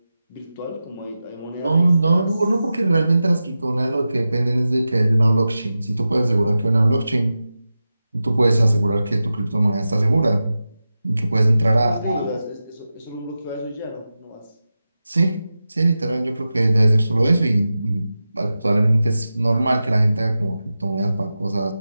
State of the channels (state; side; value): inverted; both; correlation -0.93